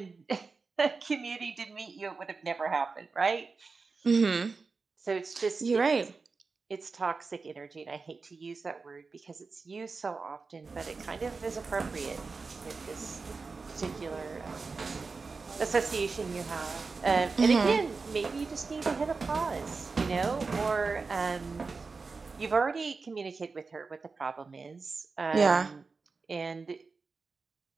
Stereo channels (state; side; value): quieter; left; 4.4 dB